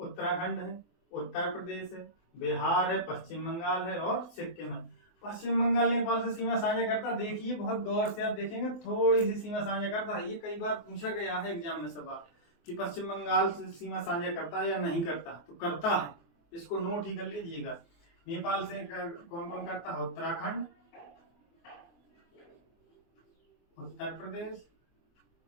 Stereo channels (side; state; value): right; late; 24 ms